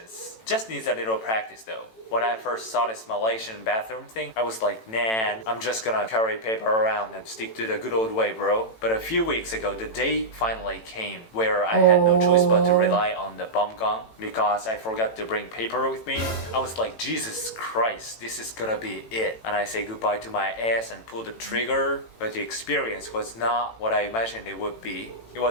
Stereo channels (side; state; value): right; late; 18 ms